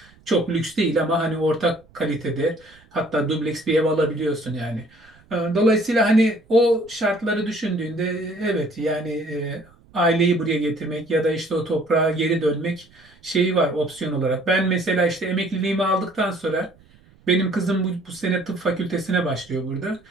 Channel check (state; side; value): noise; right; rumble, 29 dB below the sound